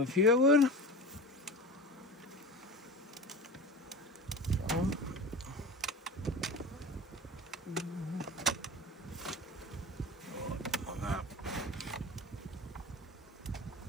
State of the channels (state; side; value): normal; both; correlation 0.32